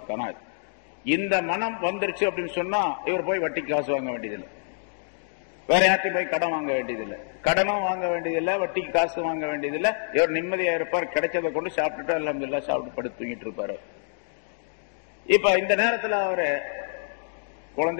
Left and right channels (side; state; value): right; silent; digital silence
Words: கனாத். இந்த மனம் வந்துருச்சு அப்படின்னு சொன்னா இவர் போய் வட்டிக்கு காசு வாங்க வேண்டியதில்லை, வேற யார்ட்டையும் போய் கடன் வாங்க வேண்டியதில்லை, கடனும் வாங்க வேண்டியதில்லை, வட்டிக்கு காசு வாங்க வேண்டியதில்லை. இவர் நிம்மதியா இருப்பார், கிடைச்சதை கொண்டு சாப்பிட்டுட்டு அல்ஹம்துலில்லாஹ் சாப்பிட்டு படுத்து தூங்கிட்டு இருப்பாரு. இப்ப இந்த நேரத்தில் அவரு